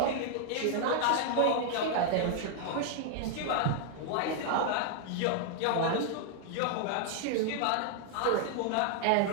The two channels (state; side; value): different; both; correlation 0.00